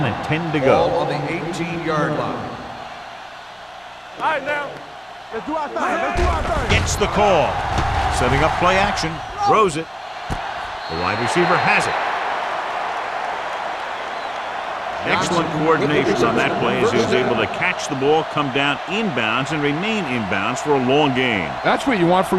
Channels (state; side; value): identical; both; correlation 1.00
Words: and 10 to Ball go. on the 18-yard line. All right, now. Let's do our thing. Gets the call. Setting up play action. Throws it. The wide receiver has it. Excellent coordination on that play as he was able to catch the ball, come down inbounds, and remain inbounds for a long gain. That's what you want